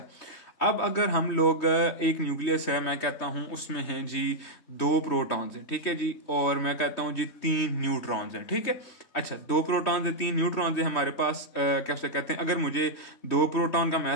अब अगर हम लोग एक न्यूक्लियस है, मैं कहता हूं उसमें है जी 2 प्रोटॉन्स हैं। ठीक है जी, और मैं कहता हूं जी 3 न्यूट्रॉन्स हैं। ठीक है। अच्छा, 2 प्रोटॉन्स है 3 न्यूट्रॉन्स है हमारे पास। कैसे कहते हैं, अगर मुझे 2 प्रोटॉन का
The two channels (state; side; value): late; right; 3.2 ms